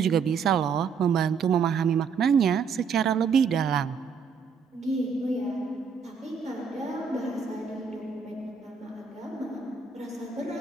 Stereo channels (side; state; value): left; quieter; 6.0 dB